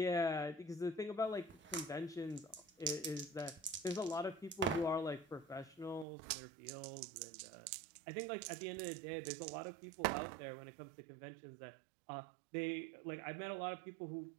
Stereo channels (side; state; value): left; drops out; at 6.1 s